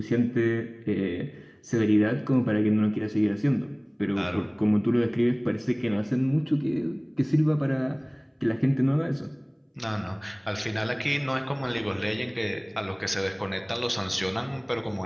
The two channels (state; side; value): identical; both; correlation 1.00